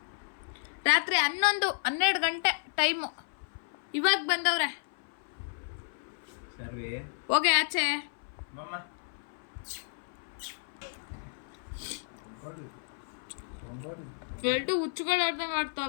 ರಾತ್ರಿ 11-12 ಗಂಟೆ ಟೈಮು. ಇವಾಗ ಬಂದವ್ರೆ. ಹೋಗಿ ಆಚೆ. ಎರಡು ಹುಚ್ಚುಗಳು ಆಡ್ದಂಗೆ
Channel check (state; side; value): silent; right; 56 dB below the other